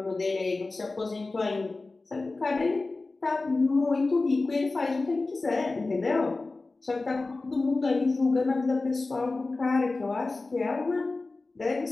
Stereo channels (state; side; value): quieter; right; 3.4 dB